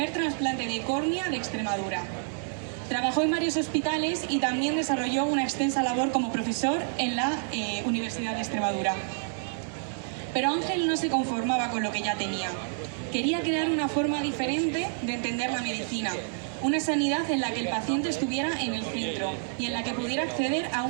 trasplante de córnea de Extremadura. Trabajó en varios hospitales y también desarrolló una extensa labor como profesor en la Universidad de Extremadura. Pero Ángel no se conformaba con lo que ya tenía. Quería crear una forma diferente de entender la medicina, una sanidad en la que el paciente estuviera en el centro y en la que pudiera acceder a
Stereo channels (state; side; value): silent; left; digital silence